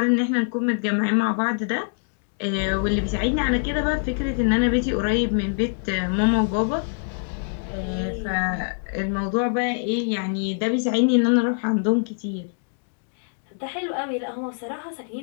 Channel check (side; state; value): right; silent; digital silence